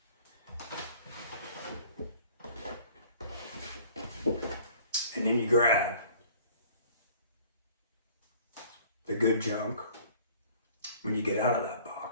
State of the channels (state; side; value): inverted; both; correlation -0.52